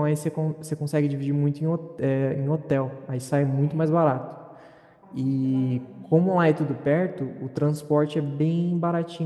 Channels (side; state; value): both; identical; correlation 1.00